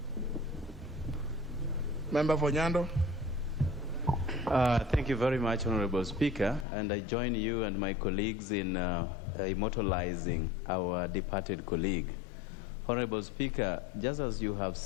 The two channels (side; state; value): right; drops out; at 6.7 s